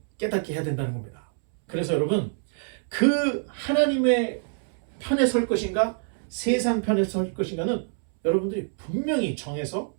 깨닫게 해야 된다는 겁니다. 그래서 여러분, 그 하나님의 편에 설 것인가 세상 편에 설 것인가는 여러분들이 분명히 정해서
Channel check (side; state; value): left; silent; 61 dB below the other